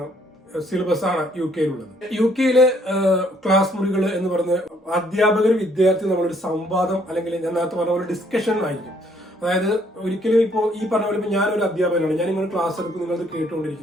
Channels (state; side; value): normal; both; correlation 0.66